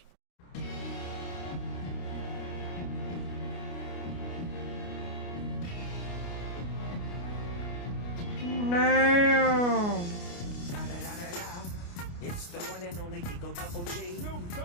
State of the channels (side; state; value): right; late; 29 ms